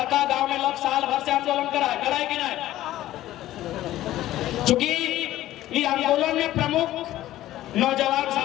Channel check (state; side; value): quieter; right; 14.5 dB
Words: गांव में लोग साल भर से आंदोलन कराए कि नहीं, चूंकि ये आंदोलन में प्रमुख नौजवान